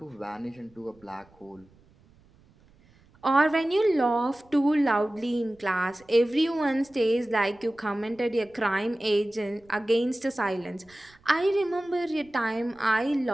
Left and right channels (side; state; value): right; noise; rumble, 30 dB below the sound